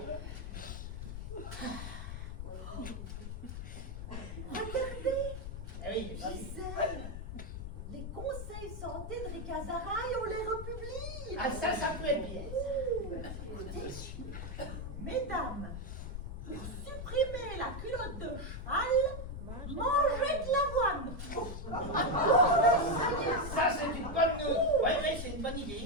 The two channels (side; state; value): left; noise; rumble, 7 dB below the sound